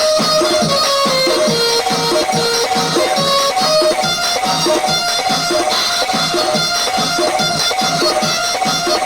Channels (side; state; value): both; identical; correlation 1.00